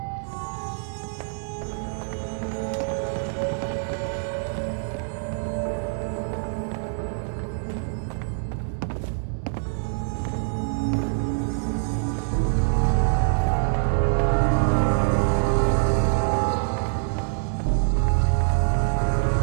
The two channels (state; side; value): silent; left; digital silence